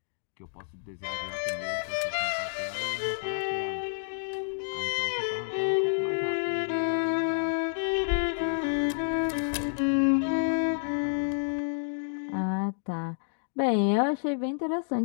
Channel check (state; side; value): silent; right; digital silence